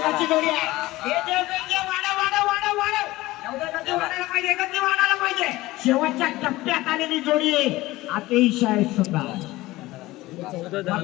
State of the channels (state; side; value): quieter; right; 18.5 dB